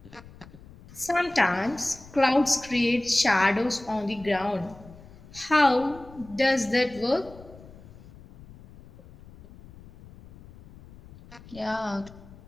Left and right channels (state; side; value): noise; left; rumble, 20 dB below the sound